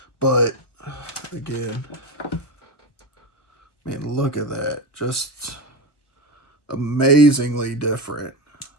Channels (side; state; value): right; late; 1.3 ms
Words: But again, man, look at that. Just amazingly different.